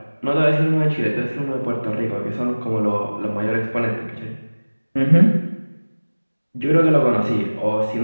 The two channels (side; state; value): both; inverted; correlation -1.00